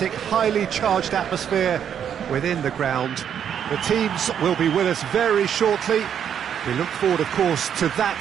highly charged atmosphere within the ground. The teams will be with us very shortly. We look forward, of course, to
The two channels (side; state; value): left; quieter; 8.7 dB